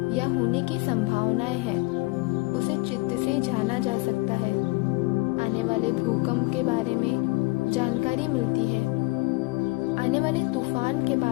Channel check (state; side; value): quieter; right; 24.8 dB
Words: या होने की संभावनाएं हैं, उसे चित्त से जाना जा सकता है। आने वाले भूकंप के बारे में जानकारी मिलती है, आने वाले तूफान के